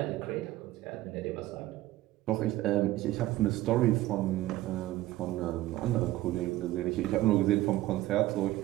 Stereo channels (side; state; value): left; quieter; 16.0 dB